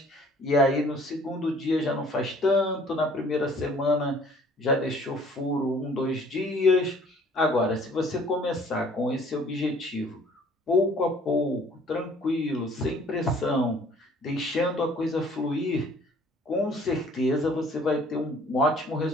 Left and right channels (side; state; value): both; normal; correlation 0.56